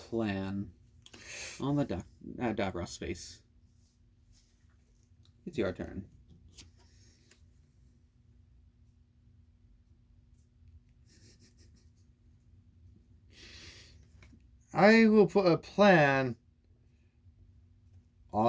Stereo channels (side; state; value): both; identical; correlation 1.00